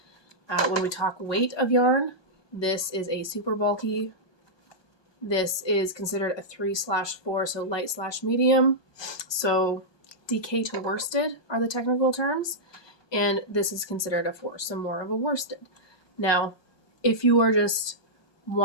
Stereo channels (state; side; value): late; right; 1.2 ms